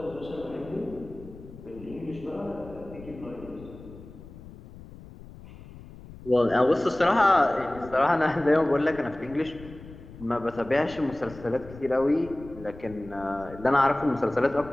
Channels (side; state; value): left; noise; rumble, 17 dB below the sound